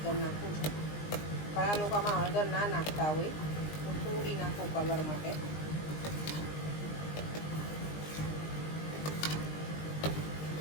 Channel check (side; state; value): right; late; 20 ms